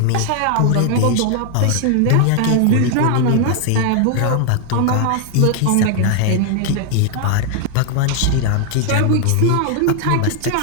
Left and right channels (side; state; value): both; different; correlation 0.00